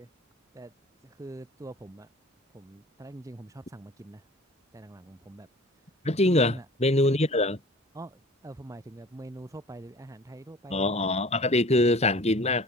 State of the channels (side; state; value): both; normal; correlation 0.44